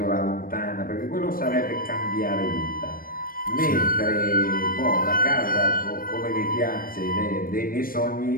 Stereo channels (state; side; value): late; right; 0.41 ms